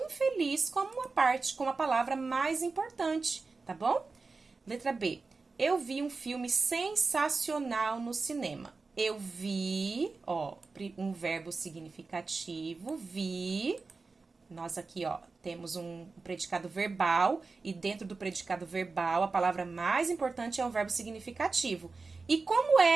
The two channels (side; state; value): left; quieter; 4.1 dB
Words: como uma parte, como a palavra mais importante, tá bom? Letra B. Eu vi um filme sensacional no cinema. Eu vi, ó, um verbo significativo, vi. Nós aqui, ó, temos um predicado verbal e dentro do predicado verbal, a palavra mais importante é o verbo significativo. E como